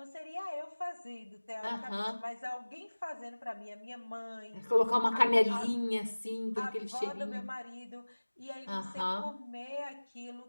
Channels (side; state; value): both; inverted; correlation -1.00